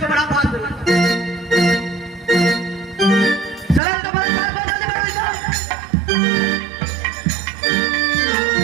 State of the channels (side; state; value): left; drops out; at 3.8 s